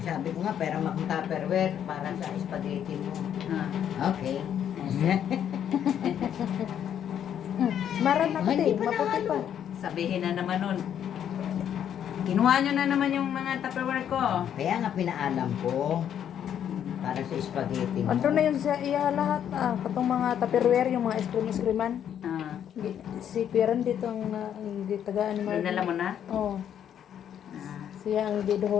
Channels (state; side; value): quieter; right; 9.5 dB